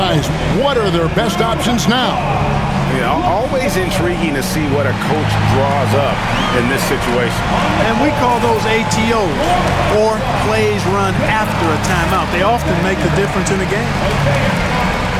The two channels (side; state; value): both; identical; correlation 1.00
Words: what are their best options now? You know, always intriguing to see what a coach draws up in this situation. And we call those ATOs, or plays run after a timeout. They often make the difference in the game.